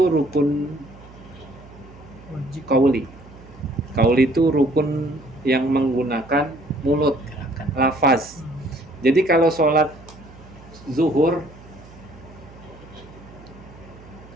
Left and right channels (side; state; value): right; noise; hum, 20 dB below the sound